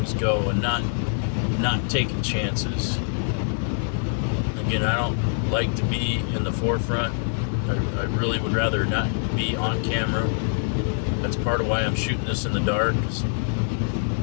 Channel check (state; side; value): silent; right; digital silence